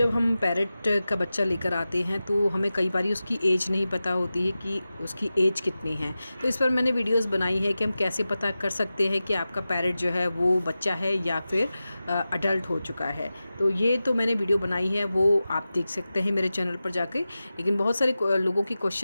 हम पैरेट का बच्चा लेकर आते हैं तो हमें कई बार उसकी एज नहीं पता होती है कि उसकी एज कितनी है। तो इस पर मैंने वीडियोस बनाई है कि हम कैसे पता कर सकते हैं कि आपका पैरेट जो है वो बच्चा है या फिर अडल्ट हो चुका है। तो ये तो मैंने वीडियो बनाई है, वो आप देख सकते हैं मेरे चैनल पर जाके। लेकिन बहुत सारे लोगों की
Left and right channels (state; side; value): inverted; both; correlation -0.94